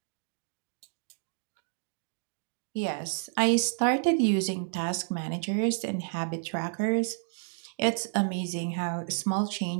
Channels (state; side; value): silent; left; digital silence